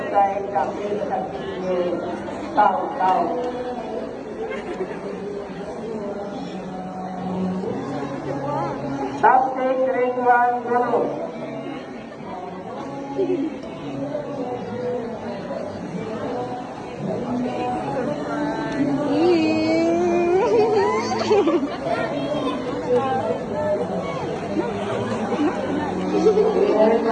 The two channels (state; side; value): identical; both; correlation 1.00